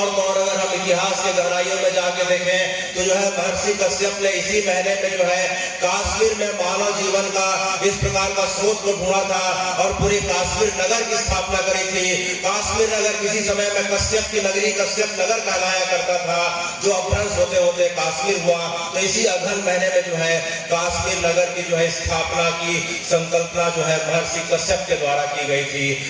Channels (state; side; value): identical; both; correlation 1.00